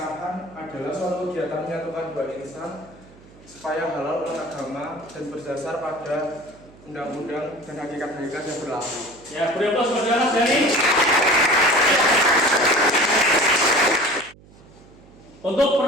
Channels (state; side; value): noise; right; hum, 24 dB below the sound